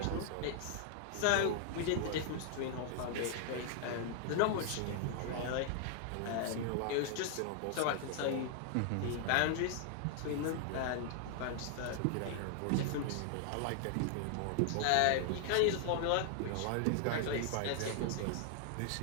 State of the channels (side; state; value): both; different; correlation 0.00